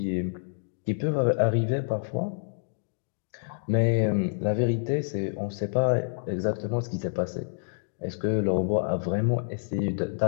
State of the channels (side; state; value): right; silent; digital silence